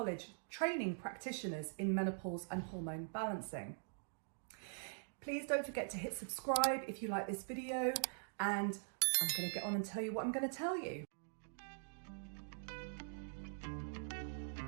training practitioners in menopause and hormone balancing. Please don't forget to hit subscribe if you like this video, and I'm going to get on and tell you what I'm going to tell you.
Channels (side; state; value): left; silent; digital silence